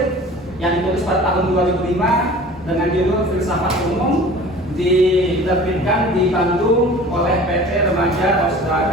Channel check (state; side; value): normal; both; correlation 0.43